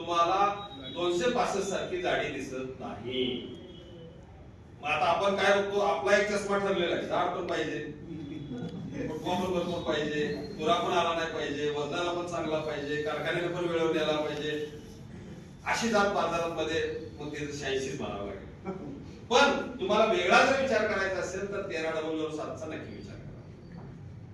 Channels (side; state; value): both; identical; correlation 1.00